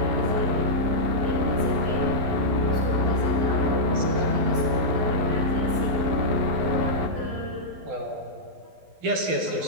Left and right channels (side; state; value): left; late; 12 ms